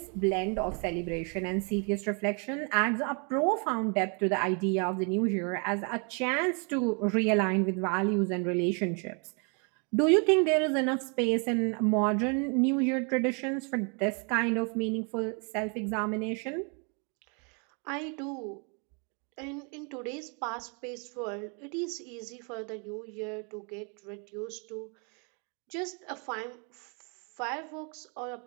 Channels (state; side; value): quieter; left; 36.5 dB